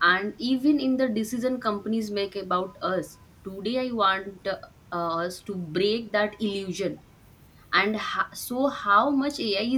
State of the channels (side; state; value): both; identical; correlation 1.00